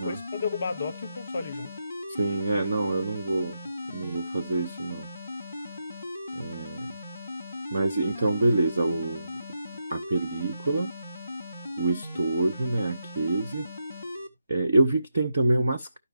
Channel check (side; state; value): both; inverted; correlation -0.84